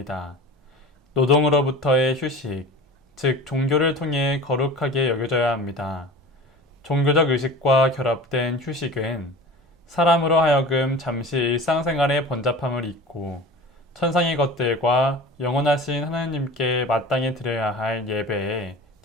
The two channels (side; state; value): both; normal; correlation 0.37